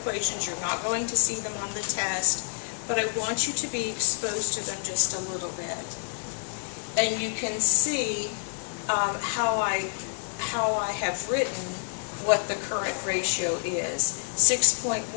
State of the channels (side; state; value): right; silent; digital silence